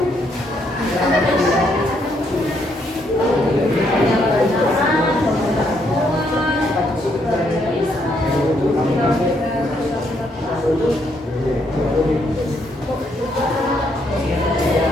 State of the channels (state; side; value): normal; both; correlation 0.73